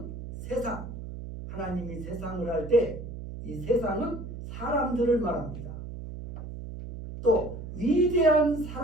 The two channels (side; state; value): right; noise; hum, 9 dB below the sound